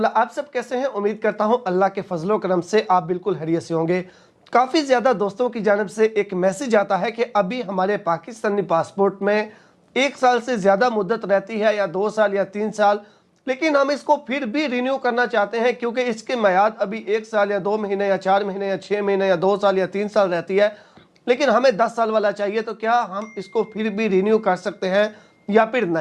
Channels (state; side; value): identical; both; correlation 1.00